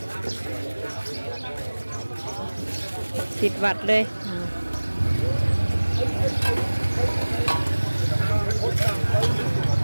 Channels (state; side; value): inverted; both; correlation -1.00